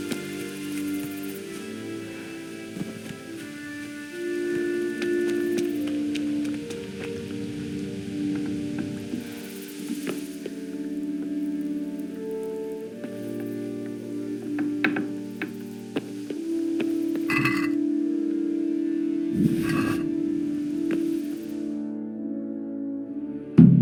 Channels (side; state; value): both; identical; correlation 1.00